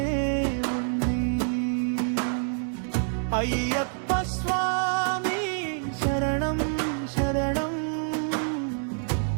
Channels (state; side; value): silent; left; 60 dB below the other